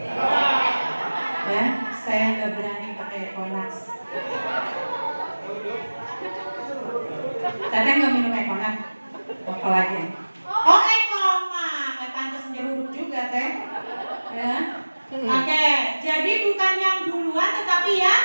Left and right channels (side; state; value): both; inverted; correlation -1.00